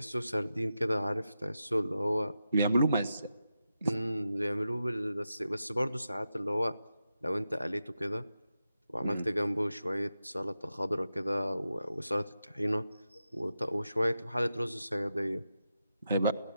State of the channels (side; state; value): both; inverted; correlation -0.89